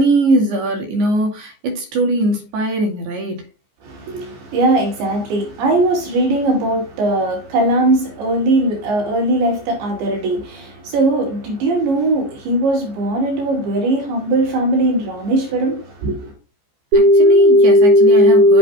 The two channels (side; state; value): left; late; 14 ms